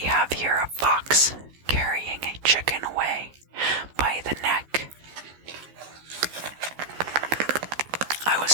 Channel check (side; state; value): left; late; 14 ms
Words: have here a fox carrying a chicken away by the neck. I